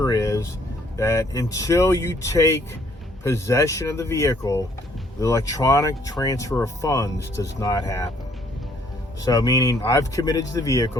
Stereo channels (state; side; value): normal; both; correlation 0.64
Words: is that until you take possession of the vehicle, the electronic transfer of funds does not happen. So meaning I've committed to the